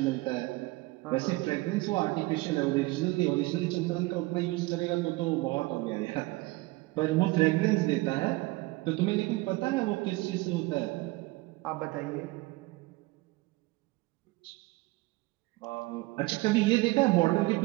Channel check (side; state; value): left; quieter; 21.7 dB